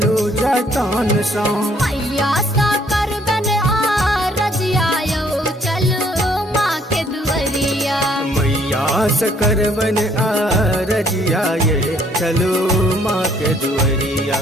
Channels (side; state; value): both; normal; correlation 0.64